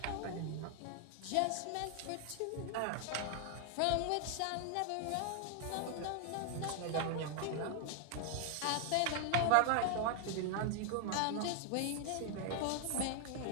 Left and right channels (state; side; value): different; both; correlation 0.00